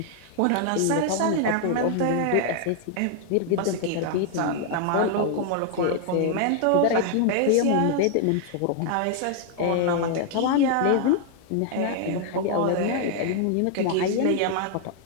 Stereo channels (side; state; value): both; different; correlation 0.00